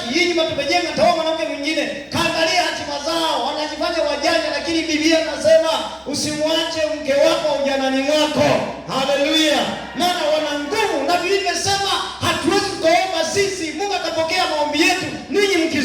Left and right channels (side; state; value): both; identical; correlation 1.00